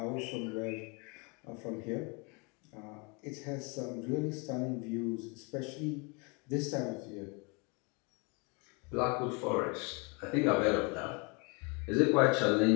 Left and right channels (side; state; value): right; quieter; 31.0 dB